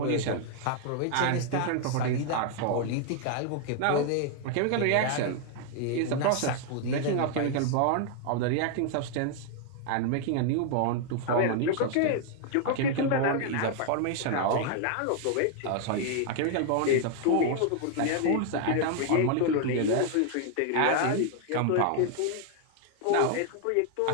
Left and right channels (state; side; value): different; both; correlation 0.00